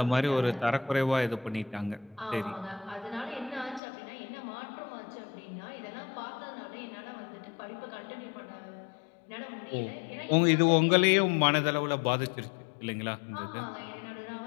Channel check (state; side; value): drops out; right; at 3.8 s